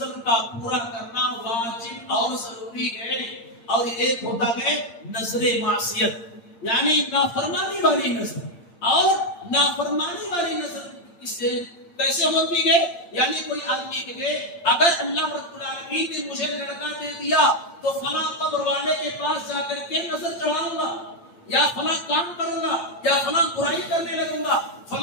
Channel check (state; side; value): late; right; 8.7 ms